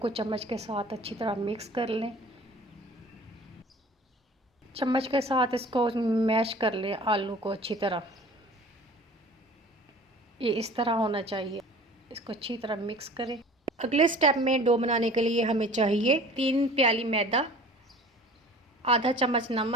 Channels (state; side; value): normal; both; correlation 0.45